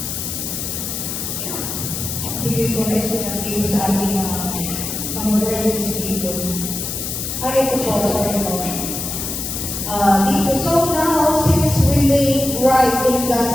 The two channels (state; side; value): noise; left; hiss, 4 dB below the sound